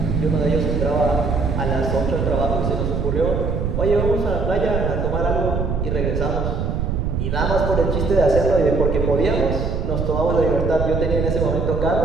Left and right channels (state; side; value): noise; right; rumble, 1 dB below the sound